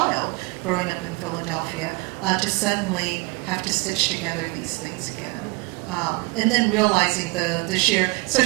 growing up in Philadelphia, to suddenly have to stitch together these things again. And then realizing the sheer, so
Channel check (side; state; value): left; quieter; 27.0 dB